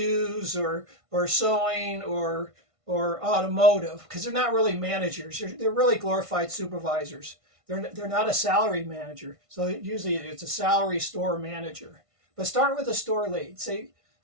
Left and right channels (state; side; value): late; left; 1.5 ms